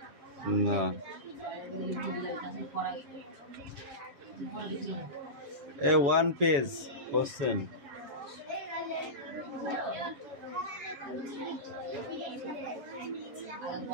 না এ 1 পেজ কোশ্চেন।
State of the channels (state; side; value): late; left; 7.2 ms